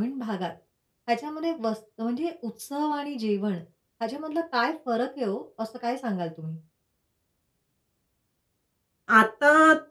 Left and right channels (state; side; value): identical; both; correlation 1.00